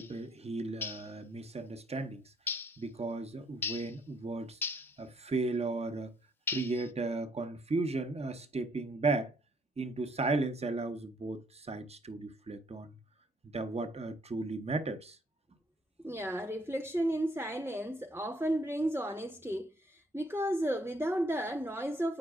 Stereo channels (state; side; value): normal; both; correlation 0.67